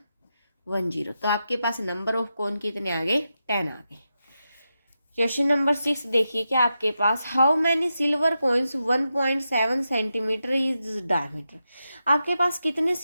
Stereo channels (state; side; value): inverted; both; correlation -0.88